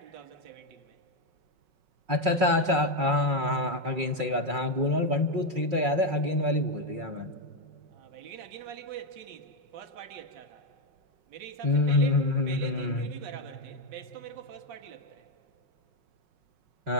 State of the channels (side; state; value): left; late; 5.4 ms